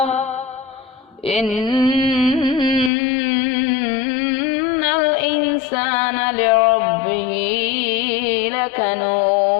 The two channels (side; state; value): right; drops out; at 2.9 s